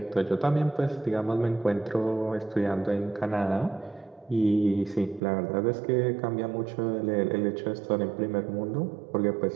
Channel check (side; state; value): left; drops out; at 5.2 s